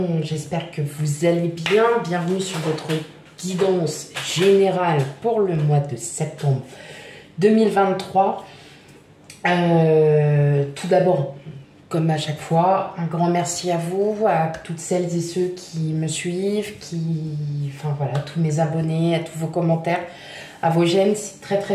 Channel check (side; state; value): both; identical; correlation 1.00